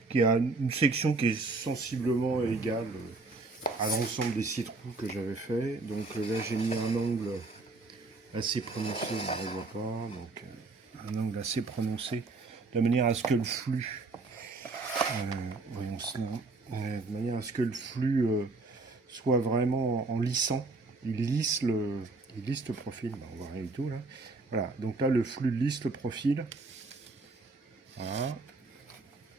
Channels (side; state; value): left; quieter; 3.6 dB